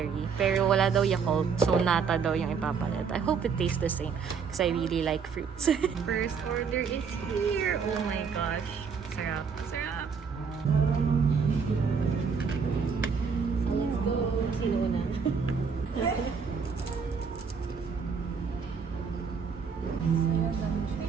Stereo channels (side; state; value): left; quieter; 5.9 dB